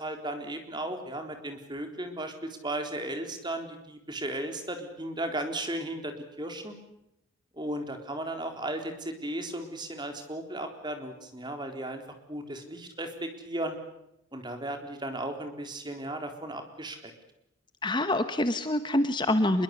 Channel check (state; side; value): normal; both; correlation 0.51